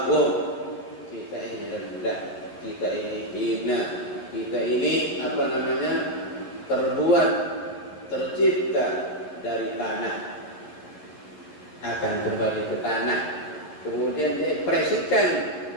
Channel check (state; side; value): late; right; 11 ms